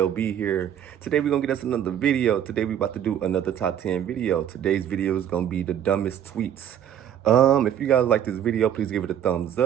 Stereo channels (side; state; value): left; quieter; 10.0 dB